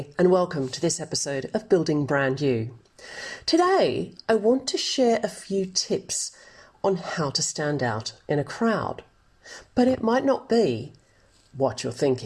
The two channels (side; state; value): both; identical; correlation 1.00